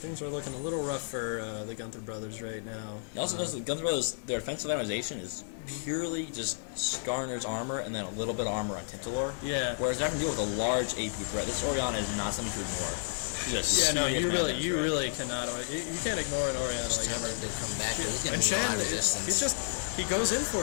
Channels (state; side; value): silent; right; digital silence